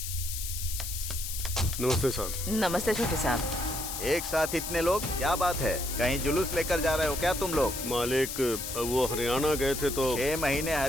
नमस्ते साहब। नमस्ते छोटे साहब। एक साथ इतने लोग, क्या बात है? कहीं जुलूस लेकर जा रहे हो क्या तुम लोग? मालिक, वो हरियाणा गए थे तो 6 महीने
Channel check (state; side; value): noise; left; hiss, 6 dB below the sound